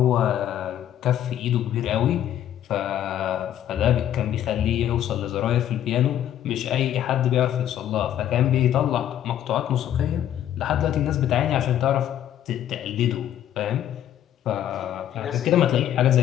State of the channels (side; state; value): right; quieter; 11.1 dB